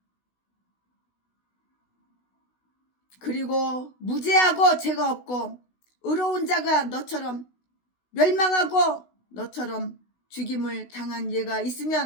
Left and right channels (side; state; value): right; late; 16 ms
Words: 그리고 무죄하고 죄가 없고 의로운 자가 너처럼 멸망하고 너처럼 죽임을 당한 예가